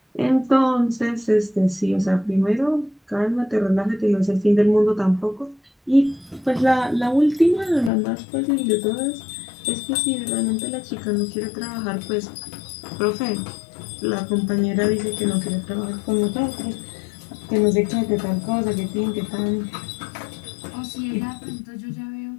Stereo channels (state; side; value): drops out; right; at 7.9 s